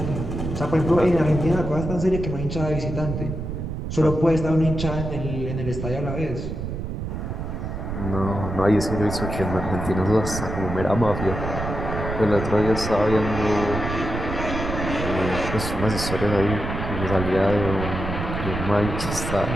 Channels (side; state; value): right; noise; rumble, 5 dB below the sound